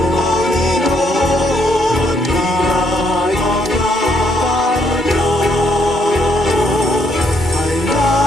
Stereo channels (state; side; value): normal; both; correlation 0.72